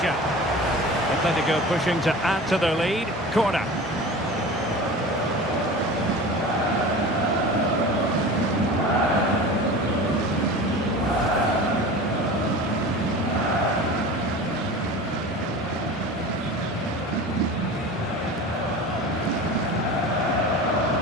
Atletico pushing to add to their lead. Corner.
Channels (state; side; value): normal; both; correlation 0.35